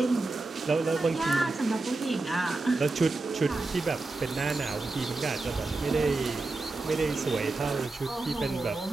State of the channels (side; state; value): left; quieter; 3.3 dB